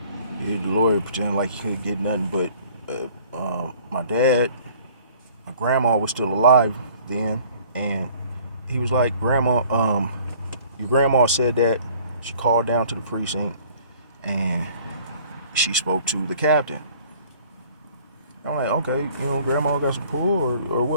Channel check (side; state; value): both; inverted; correlation -0.53